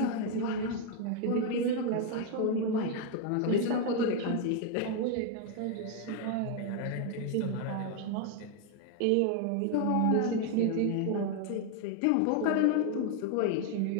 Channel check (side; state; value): both; different; correlation 0.01